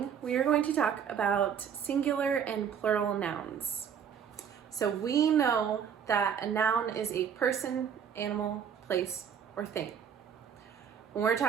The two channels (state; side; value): quieter; left; 7.8 dB